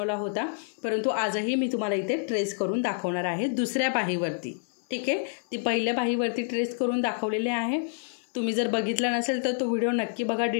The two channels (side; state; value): right; silent; digital silence